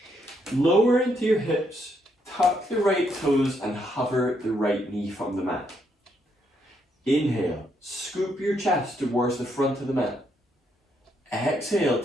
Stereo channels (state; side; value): normal; both; correlation 0.75